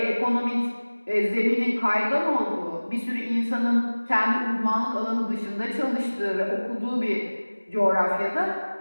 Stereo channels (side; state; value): both; inverted; correlation -1.00